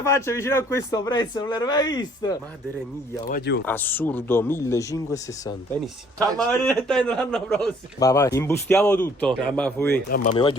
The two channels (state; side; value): normal; both; correlation 0.60